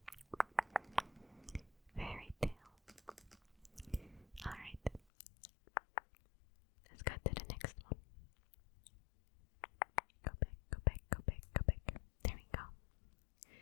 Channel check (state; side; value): drops out; right; at 5.0 s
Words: Fairy tale. Alright. Let's go to the next one. Go back, go back, go back, go back. There we go.